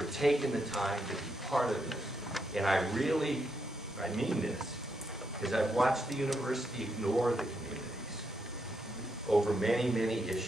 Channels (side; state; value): both; normal; correlation 0.80